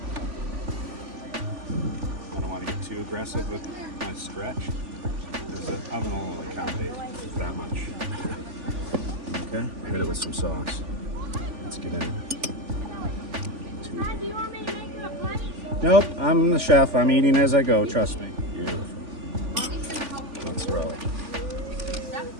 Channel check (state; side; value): late; left; 3.5 ms